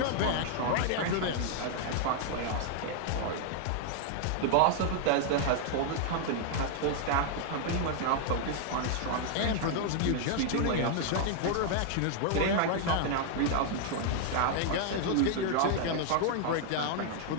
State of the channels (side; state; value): both; different; correlation 0.00